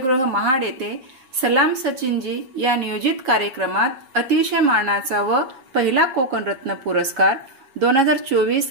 महाड येथे सलाम सचिनजी या नियोजित कार्यक्रमात अतिशय मानाचा व पहिला कोकण रत्न पुरस्कार 2024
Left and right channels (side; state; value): left; late; 7.2 ms